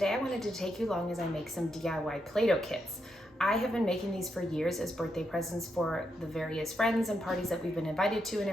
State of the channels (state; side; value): normal; both; correlation 0.82